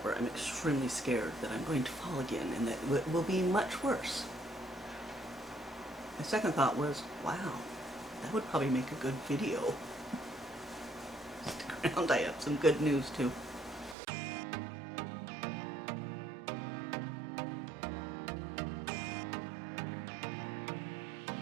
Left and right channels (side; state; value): left; drops out; at 14.0 s